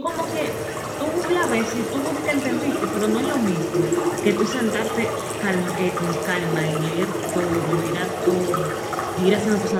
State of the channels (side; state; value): both; identical; correlation 1.00